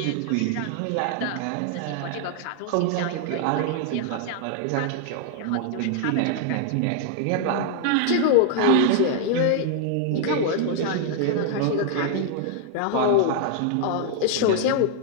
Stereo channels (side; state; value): both; different; correlation 0.00